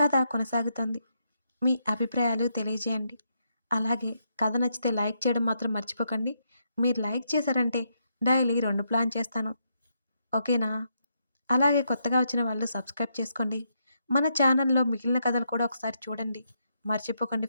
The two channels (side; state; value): both; inverted; correlation -0.79